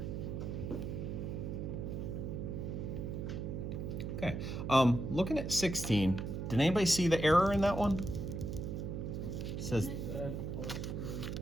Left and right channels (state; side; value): noise; right; hum, 4 dB below the sound